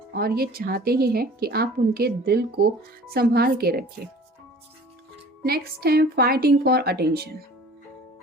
और ये चाहते ही हैं कि आप उनके दिल को संभाल के रखें। नेक्स्ट है फाइटिंग फॉर अटेंशन।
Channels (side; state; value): both; normal; correlation 0.46